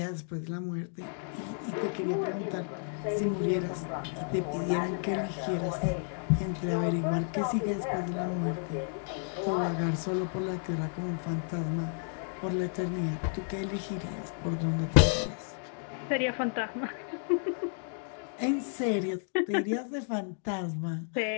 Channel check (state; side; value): silent; right; 56 dB below the other